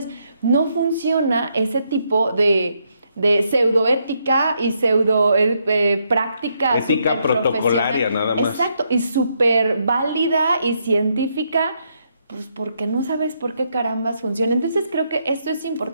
no funciona ese tipo de pseudoética y práctica. Ética protocolaria, nada más. Exacto, y súper válida y científica, pues porque no sabes por qué carambas funciona. Entonces creo que esto es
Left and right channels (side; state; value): both; inverted; correlation -0.77